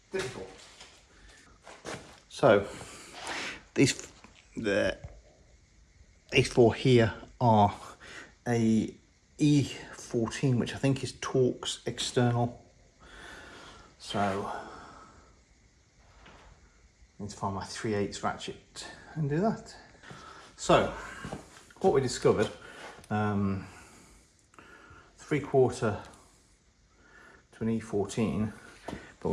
Difficult. So these 4 here are a E14, which I think is Torx external. So I need to find my 3/8 ratchet and do that. So what we discovered, 3/4 to an E14, but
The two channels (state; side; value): identical; both; correlation 1.00